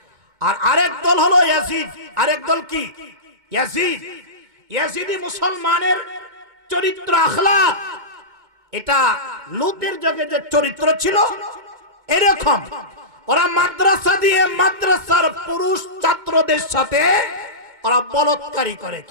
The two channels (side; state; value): left; late; 2.2 ms